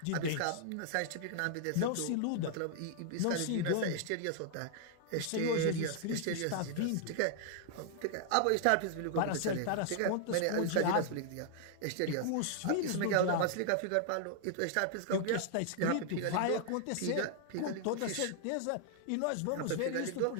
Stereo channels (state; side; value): different; both; correlation 0.00